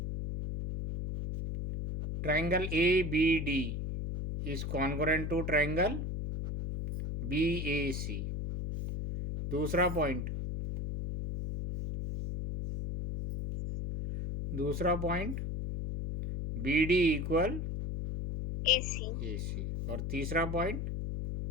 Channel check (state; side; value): noise; left; hum, 3 dB below the sound